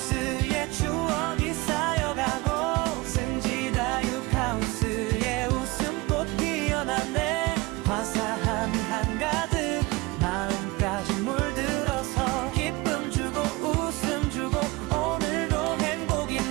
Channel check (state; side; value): quieter; left; 22.6 dB